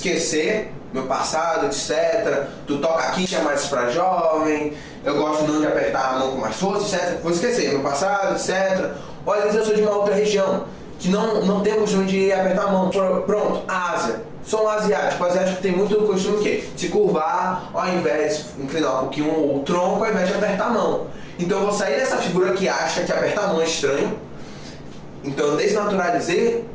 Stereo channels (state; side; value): identical; both; correlation 1.00